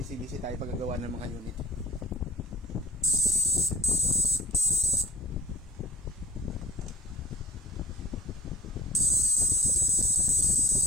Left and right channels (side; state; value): both; normal; correlation 0.41